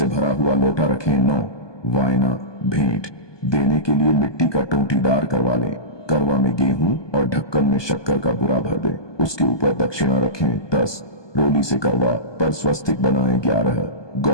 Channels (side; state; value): right; late; 1.2 ms